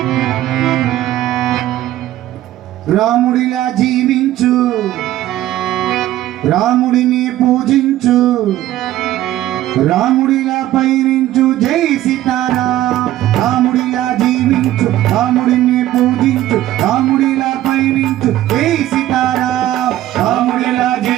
రాముడిలా జీవించు, రాముడిని పూజించు, రాముడిలా పయనించు. జై సీతారాం. రాముడిలా జీవించు, రాముడిని పూజించు, రాముడిలా పయనించు. జై సీతారాం. రాముడిలా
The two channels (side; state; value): left; quieter; 14.0 dB